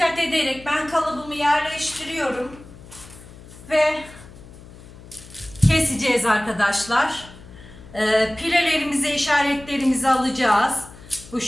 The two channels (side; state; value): left; noise; hum, 19 dB below the sound